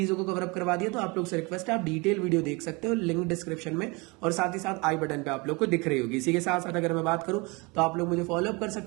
को कवर अप करवा दिया, तो आप लोग से रिक्वेस्ट है, आप डिटेल वीडियो देख सकते हो, लिंक डिस्क्रिप्शन में और साथ ही साथ आई बटन पे आप लोग को दिख रही होगी। इसी के साथ साथ अगर मैं बात करूं तो आप लोग मुझे फॉलो अप कर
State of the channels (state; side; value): quieter; left; 27.4 dB